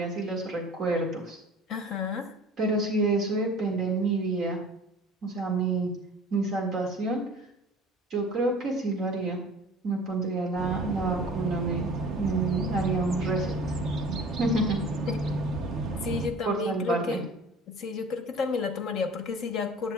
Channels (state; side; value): normal; both; correlation 0.44